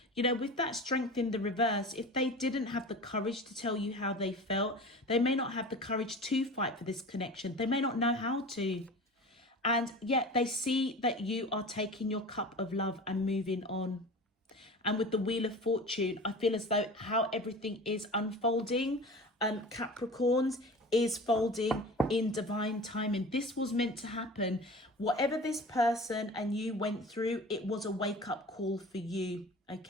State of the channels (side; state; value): both; normal; correlation 0.36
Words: you know, with that strength in the reverse, if they didn't have the courage to tell you how they felt, they may not have the courage to fight for this connection. They may not know how to. And yet they see that you are taking your cup of love and moving on. And with the Wheel of Fortune, I feel as though how everything is unfolding, Capricorns, is folding in divine timing. This was meant to happen. Whatever this person and you went through, it was a wake-up call for you,